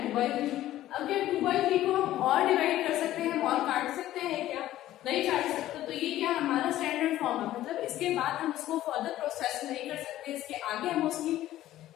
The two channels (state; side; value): quieter; right; 14.1 dB